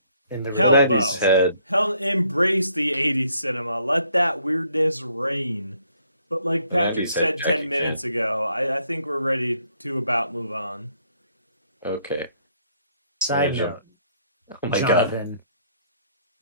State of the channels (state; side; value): inverted; both; correlation -0.68